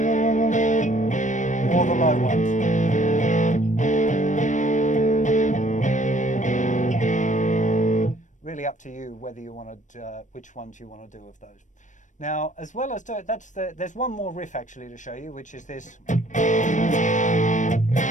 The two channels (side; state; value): right; late; 0.36 ms